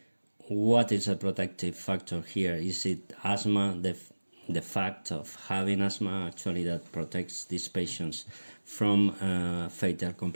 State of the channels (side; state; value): both; inverted; correlation -1.00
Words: what is a protective factor here? Is it asthma, the fact of having asthma actually that protects these patients from fatal